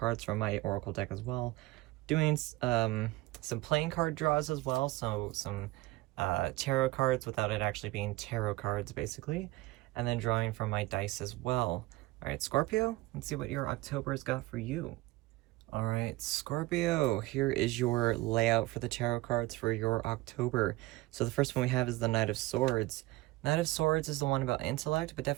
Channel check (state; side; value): quieter; left; 19.6 dB